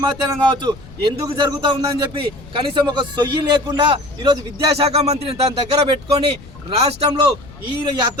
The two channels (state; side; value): noise; left; rumble, 19 dB below the sound